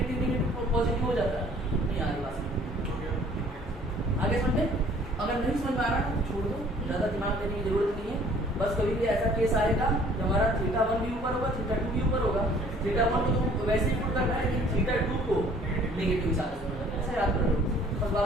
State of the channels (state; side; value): normal; both; correlation 0.55